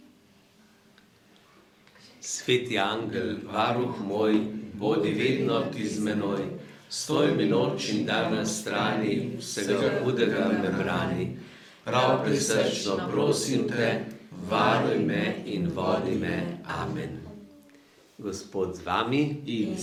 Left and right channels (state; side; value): identical; both; correlation 1.00